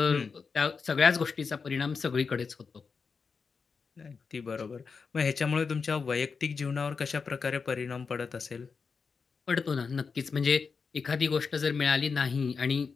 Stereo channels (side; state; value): right; quieter; 5.2 dB